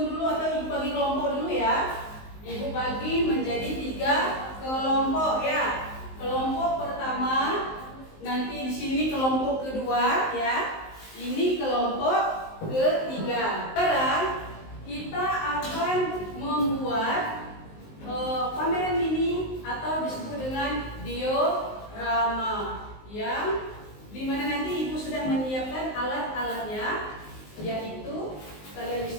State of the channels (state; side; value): late; right; 19 ms